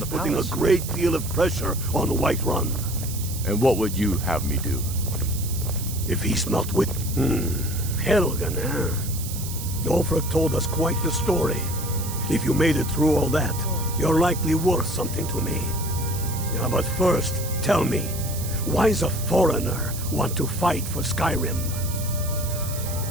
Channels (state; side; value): noise; right; hiss, 9 dB below the sound